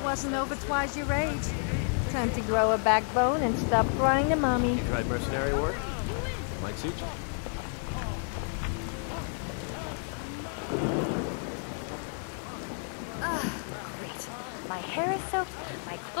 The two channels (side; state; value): right; silent; 55 dB below the other